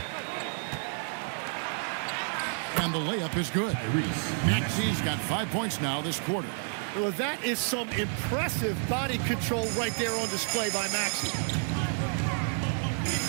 And the layup is good. Maxey's got 5 points now this quarter. Well, that is some impressive body control right there on display by Maxey.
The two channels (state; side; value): silent; left; 58 dB below the other